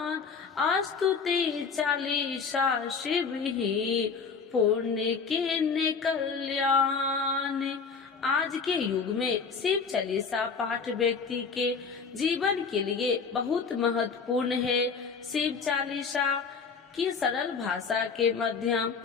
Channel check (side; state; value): right; quieter; 5.4 dB